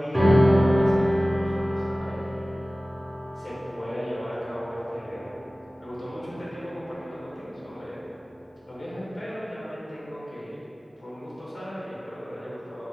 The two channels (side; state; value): both; normal; correlation 0.97